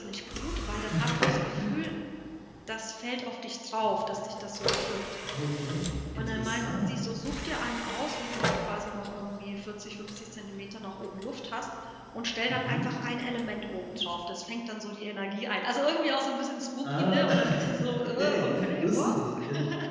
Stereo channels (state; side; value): identical; both; correlation 1.00